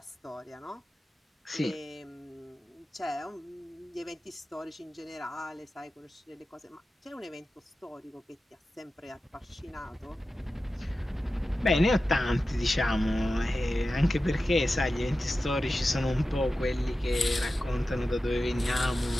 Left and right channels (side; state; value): both; normal; correlation 0.93